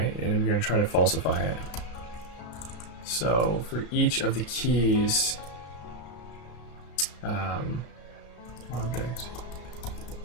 and I'm going to try to falsify it. So for each of the keys, object,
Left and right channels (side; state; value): right; late; 34 ms